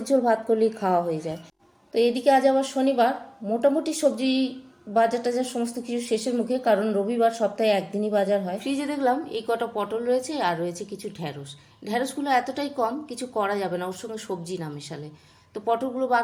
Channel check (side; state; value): both; identical; correlation 1.00